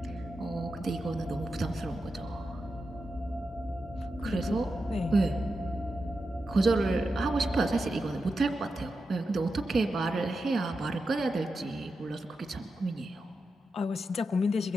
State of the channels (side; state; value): both; normal; correlation 0.89